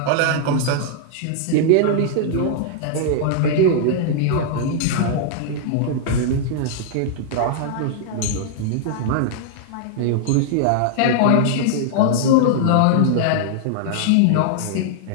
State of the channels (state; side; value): different; both; correlation -0.01